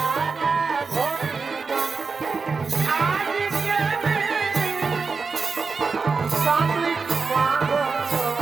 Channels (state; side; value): quieter; left; 4.7 dB